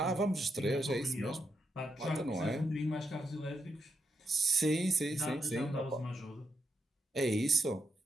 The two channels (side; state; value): both; normal; correlation 0.82